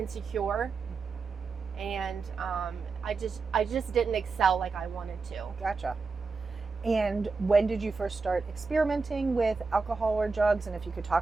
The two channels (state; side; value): quieter; left; 4.4 dB